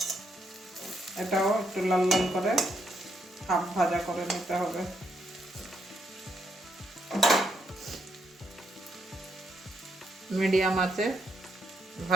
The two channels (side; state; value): both; normal; correlation 0.77